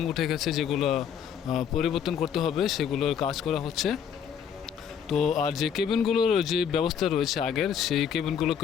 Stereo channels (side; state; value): right; quieter; 8.0 dB